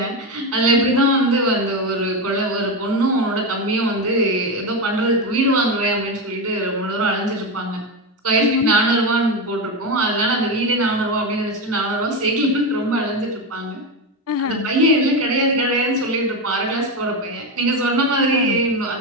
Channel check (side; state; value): both; normal; correlation 0.14